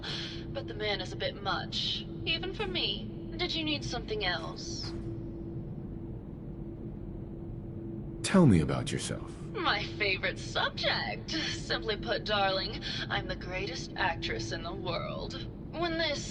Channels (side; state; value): both; identical; correlation 1.00